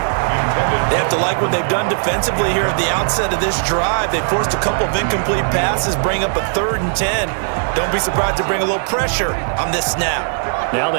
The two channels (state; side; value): silent; left; 63 dB below the other